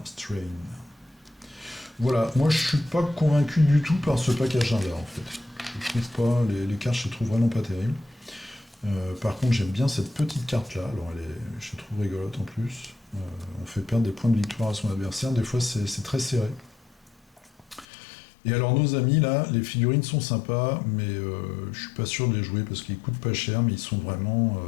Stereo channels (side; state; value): right; drops out; at 17.9 s